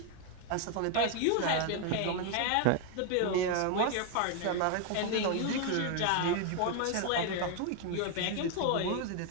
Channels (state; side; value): different; both; correlation 0.00